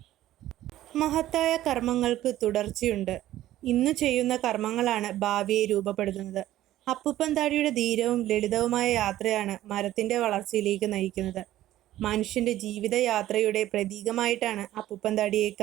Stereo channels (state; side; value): quieter; left; 14.0 dB